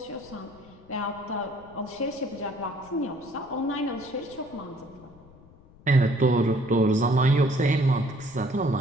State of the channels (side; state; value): left; noise; rumble, 24 dB below the sound